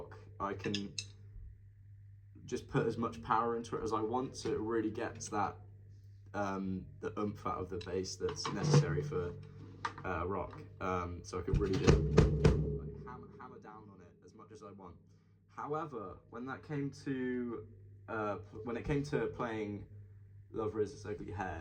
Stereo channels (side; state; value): both; identical; correlation 1.00